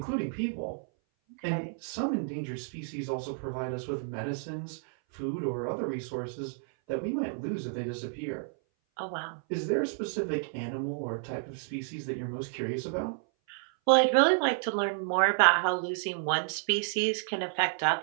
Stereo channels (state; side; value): silent; left; 57 dB below the other